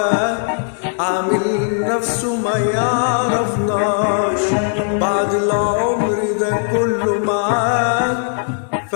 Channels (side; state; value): right; silent; digital silence